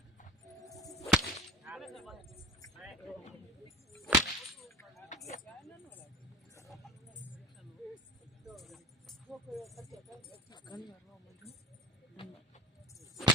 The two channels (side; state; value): both; normal; correlation 0.38